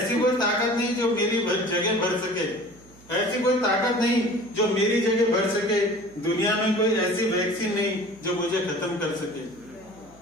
कोई ताकत नहीं जो मेरी जगह भर सके, ऐसी कोई ताकत नहीं जो मेरी जगह भर सके। दुनिया में कोई ऐसी वैक्सीन नहीं जो मुझे खत्म कर सके।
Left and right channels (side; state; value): right; noise; hum, 24 dB below the sound